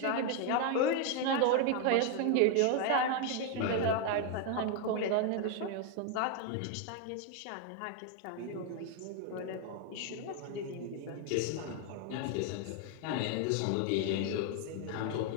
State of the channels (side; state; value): both; different; correlation 0.01